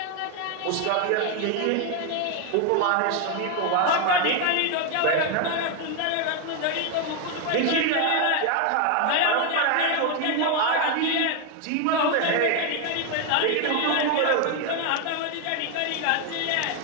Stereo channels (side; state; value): both; different; correlation 0.01